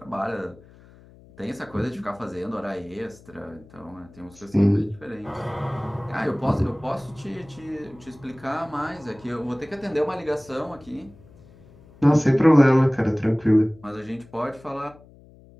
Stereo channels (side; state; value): left; noise; hum, 24 dB below the sound